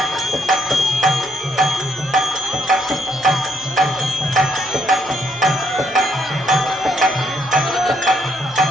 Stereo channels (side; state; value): right; noise; hum, 29 dB below the sound